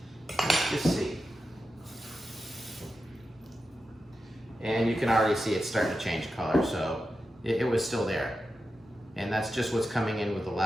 Let's just see. and you can already see it's starting to change color, so it was still there. And that's just what's coming in with the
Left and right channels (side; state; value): both; normal; correlation 0.90